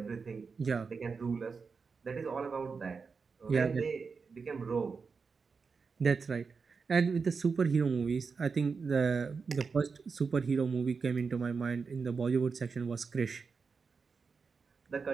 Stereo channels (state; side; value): quieter; left; 5.1 dB